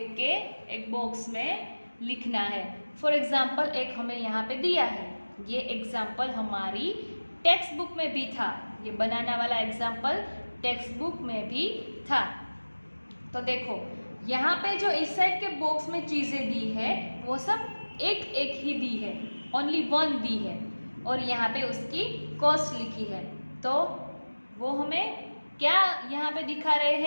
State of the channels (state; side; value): inverted; both; correlation -1.00